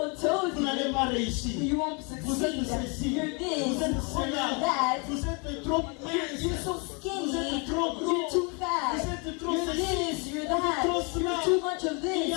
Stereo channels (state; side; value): quieter; right; 32.9 dB